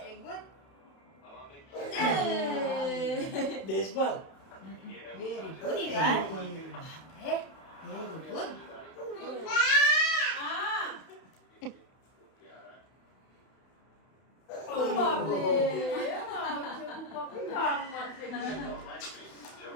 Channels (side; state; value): right; late; 31 ms